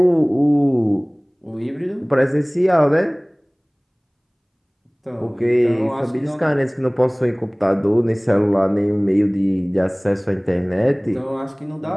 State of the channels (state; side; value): identical; both; correlation 1.00